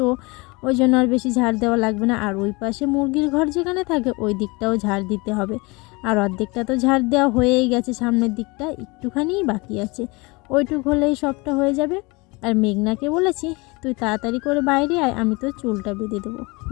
ওই জন্য আর বেশি ঝাড় দেওয়া লাগবে না। আর ওই পাশে মুরগির ঘর যেখানে থাকে ওই দিকটাও ঝাড় দিতে হবে। আর অর্ধেকটা তো ঝাড় দেওয়া হয়েই গেছে, সামনের দিকটা একটুখানিই বাকি আছে। ওইটুক হলেই সবটা হয়ে যাবে। আর মেঘনাকে বলেছি তুই তাড়াতাড়ি করে বাইরে আয়, আমি তো চুলটা বেঁধে দেবো।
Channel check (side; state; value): right; quieter; 25.9 dB